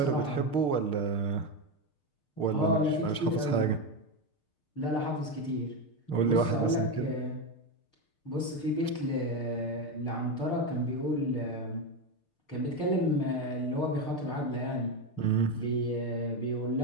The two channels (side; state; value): right; late; 6.6 ms